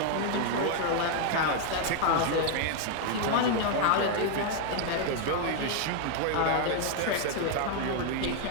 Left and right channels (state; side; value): different; both; correlation 0.00